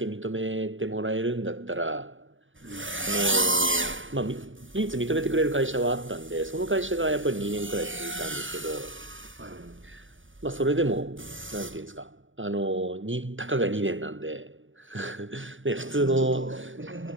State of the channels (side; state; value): left; late; 0.57 ms